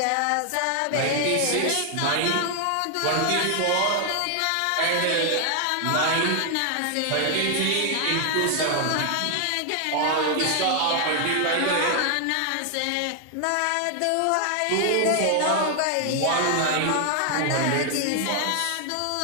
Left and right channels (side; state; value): both; different; correlation 0.00